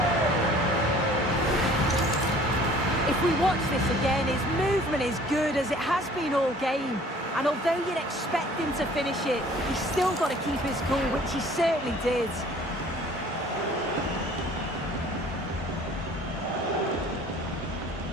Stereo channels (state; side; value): normal; both; correlation 0.52